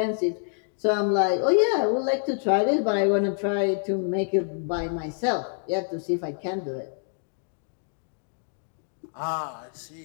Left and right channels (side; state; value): right; silent; 60 dB below the other